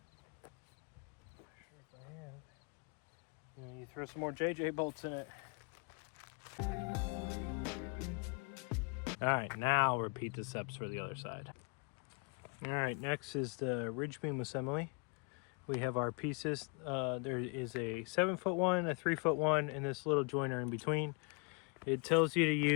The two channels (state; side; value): quieter; right; 34.1 dB